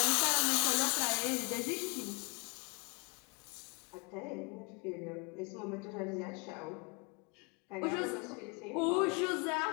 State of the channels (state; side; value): quieter; right; 32.2 dB